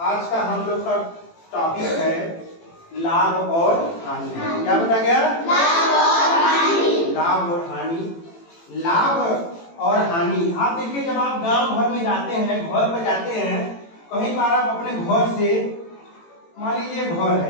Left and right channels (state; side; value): late; right; 18 ms